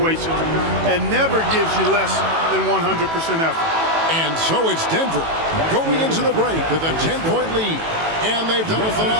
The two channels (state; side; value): late; left; 18 ms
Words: and never gives you less than 100% effort. And so it's Denver going into the break with a 10-point lead. And they've done a